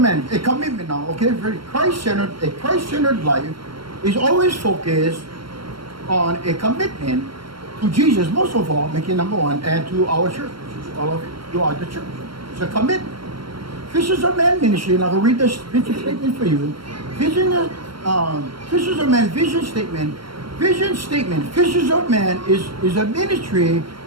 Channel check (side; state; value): left; late; 0.73 ms